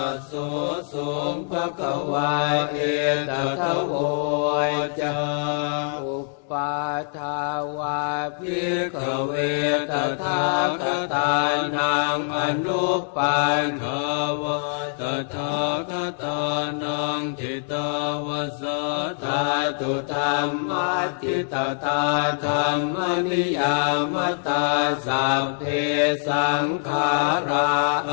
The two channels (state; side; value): silent; right; digital silence